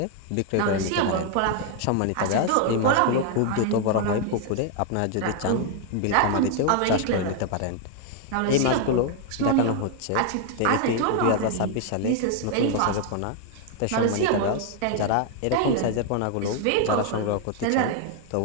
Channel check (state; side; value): different; both; correlation 0.00